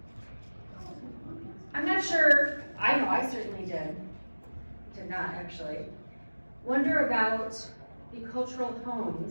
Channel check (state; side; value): inverted; both; correlation -1.00